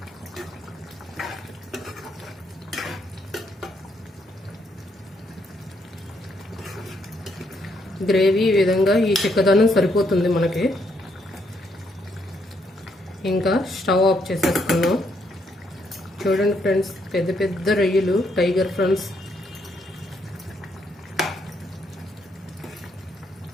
గ్రేవీ ఈ విధంగా ఈ చిక్కదనం సరిపోతుంది మనకి. ఇంకా స్టవ్ ఆఫ్ చేసేసుకున్నాం. చూడండి ఫ్రెండ్స్, పెద్ద పెద్ద రొయ్యలు, టైగర్ ఫ్రాన్స్.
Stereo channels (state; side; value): normal; both; correlation 0.74